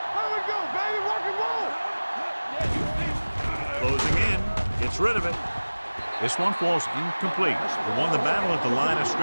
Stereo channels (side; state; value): both; inverted; correlation -1.00